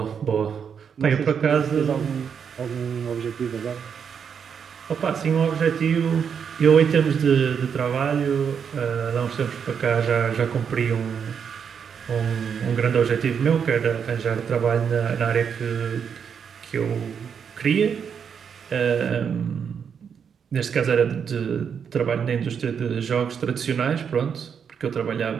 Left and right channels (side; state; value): left; quieter; 7.1 dB